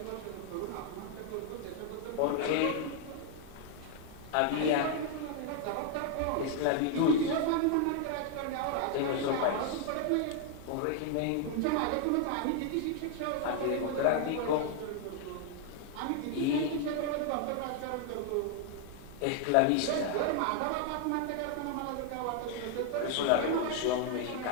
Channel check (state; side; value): different; both; correlation 0.00